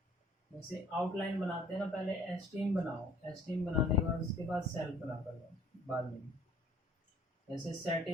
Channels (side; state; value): both; normal; correlation 0.56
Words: जैसे आउटलाइन बनाते हैं ना, पहले एस्टीम बनाओ, एस्टीम बनाने के बाद उसके बाद सेल्फ बना कर लो बाद में। जैसे